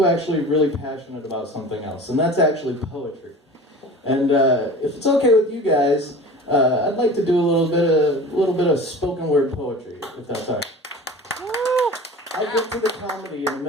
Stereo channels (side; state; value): both; normal; correlation 0.38